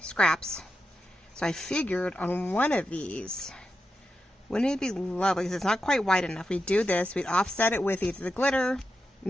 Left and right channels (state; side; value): normal; both; correlation 0.88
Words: scraps. So I figured on one of these, wouldn't it be lovely, because it's not quite wide enough. We'd do this, we'd offset it with either the glitter,